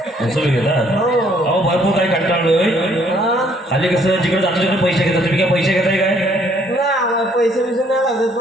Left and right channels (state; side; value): normal; both; correlation 0.64